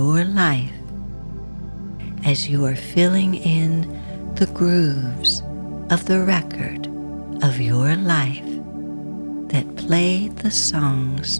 life as you are filling in the grooves of the record of your life that play the songs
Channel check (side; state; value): both; inverted; correlation -1.00